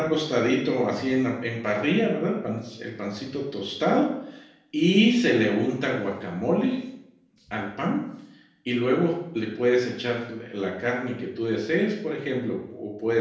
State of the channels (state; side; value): identical; both; correlation 1.00